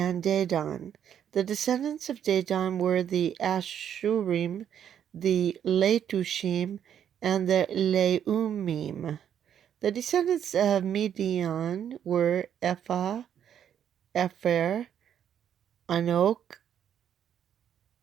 Dedan. The descendants of Dedan were the Ashurim, the Letushim, and the Leumim. The descendants of Midian were Ephah, Epher, Anok,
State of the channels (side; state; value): left; quieter; 9.3 dB